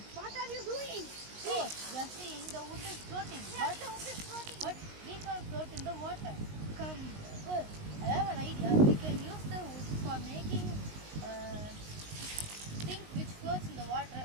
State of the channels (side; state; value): left; late; 19 ms